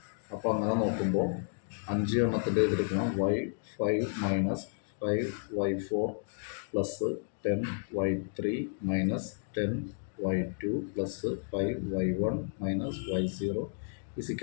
അപ്പോൾ അങ്ങനെ നോക്കുമ്പോൾ 5 എണ്ണത്തിൻ്റെ എഴുതിയിരിക്കണം y5 minus 5y4 plus 10y3 minus 10y2 plus 5y1 minus y0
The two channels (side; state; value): right; silent; digital silence